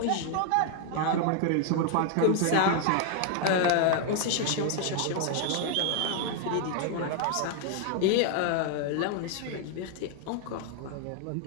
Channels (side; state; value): both; different; correlation 0.00